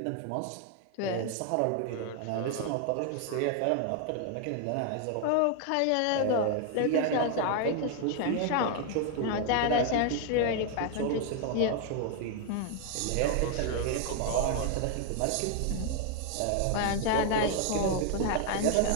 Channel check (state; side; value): different; both; correlation 0.00